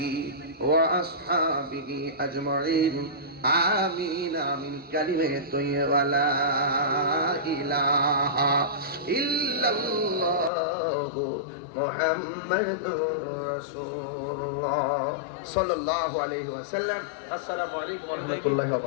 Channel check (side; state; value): right; drops out; at 10.5 s